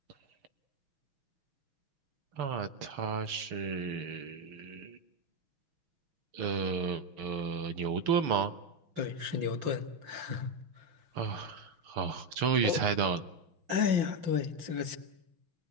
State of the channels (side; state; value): left; late; 6.9 ms